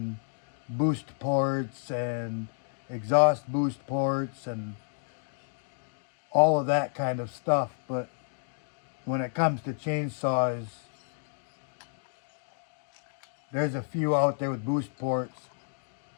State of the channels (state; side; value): silent; right; digital silence